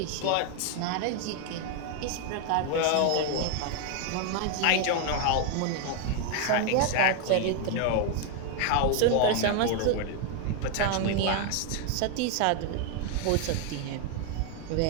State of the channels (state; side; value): different; both; correlation 0.01